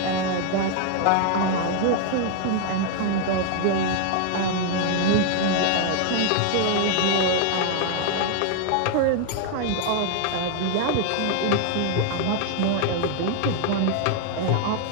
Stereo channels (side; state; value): both; different; correlation 0.00